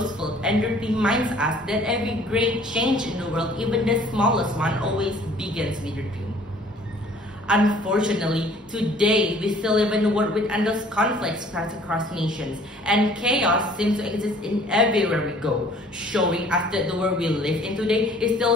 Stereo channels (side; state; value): both; normal; correlation 0.54